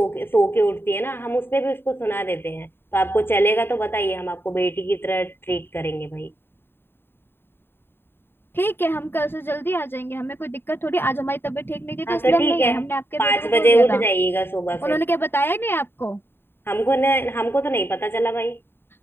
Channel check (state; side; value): late; right; 0.11 ms